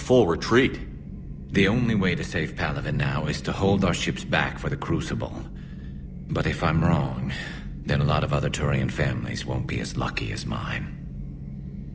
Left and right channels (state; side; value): identical; both; correlation 1.00